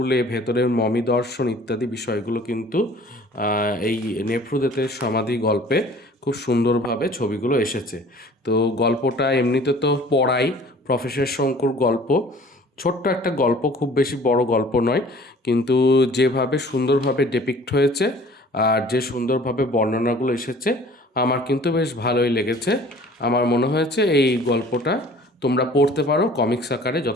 ভেতরের মমি দর্শন ইত্যাদি বিষয়গুলো কিন্তু এই নেফ্রুদেতের সমাধি গল্পে খুব সুন্দরভাবে ছবিগুলো এসেছে। তো গল্পটা এমনিতে তো পড়াই, প্রফেসর শঙ্কুর গল্প, ছোট্ট একটা গল্প, খুব বেশি বড় গল্প নয়, কিন্তু যেভাবে সুন্দরভাবে ডেপিক্ট হয়েছে আর যে সুন্দরভাবে বর্ণনাগুলো এসেছে আমার কিন্তু বেশ ভালোই লেগেছে। আমার মনে হয়েছে এই গল্পটা তোমরা পড়তে পারো, কমিক্স আকারে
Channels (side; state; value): both; normal; correlation 0.49